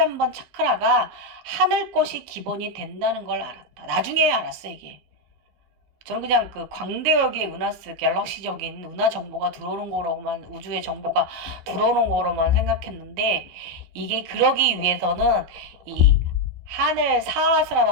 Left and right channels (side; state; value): left; late; 15 ms